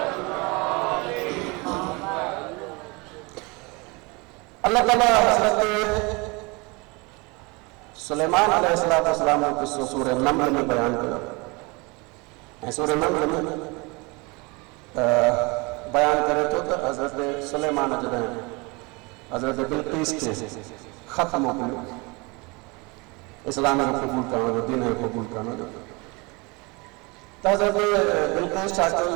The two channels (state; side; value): quieter; left; 27.3 dB